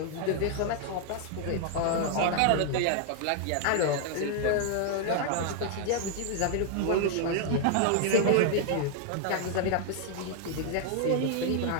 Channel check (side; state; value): both; different; correlation 0.00